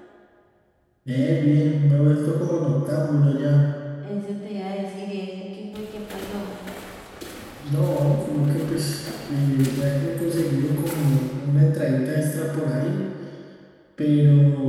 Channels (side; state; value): both; identical; correlation 1.00